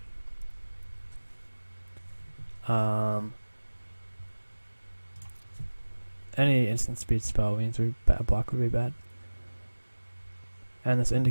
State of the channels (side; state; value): both; inverted; correlation -1.00